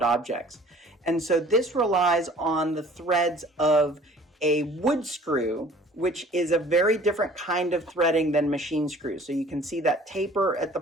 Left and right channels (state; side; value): normal; both; correlation 0.51